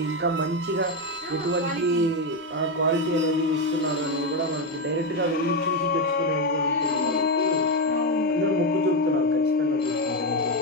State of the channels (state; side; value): normal; both; correlation 0.09